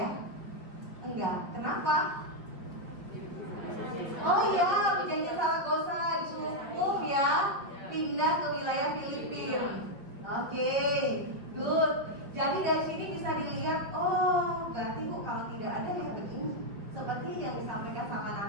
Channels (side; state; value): left; late; 5.4 ms